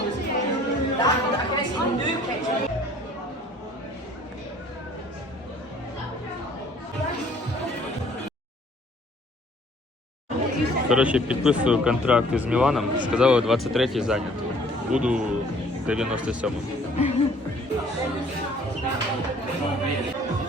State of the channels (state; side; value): normal; both; correlation 0.56